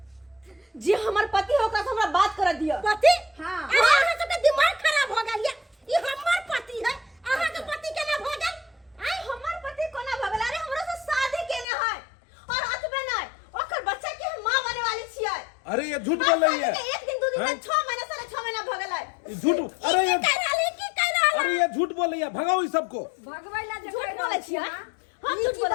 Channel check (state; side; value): drops out; right; at 11.7 s